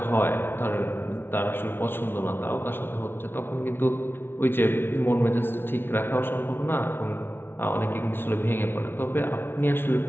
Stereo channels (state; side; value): late; right; 0.11 ms